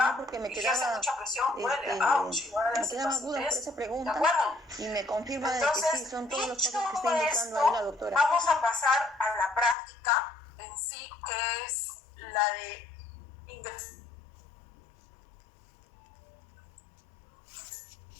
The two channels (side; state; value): right; drops out; at 9.8 s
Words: porque me y ejerce quedaba, mucha presión, duele, ouch, igual me hace quedaban dudas por pacientes, esa ¿de pregunta acuerdo? y me confirma de que Entonces, sí, son todos los dicho pasos que está indicando ahí la doctora. vamos a pasar a la práctica en sí, que es la de ingresar